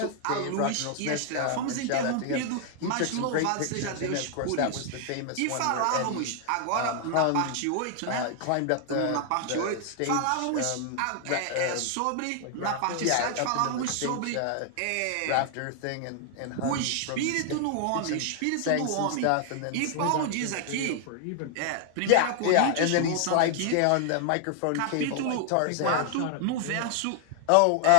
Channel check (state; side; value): different; both; correlation 0.00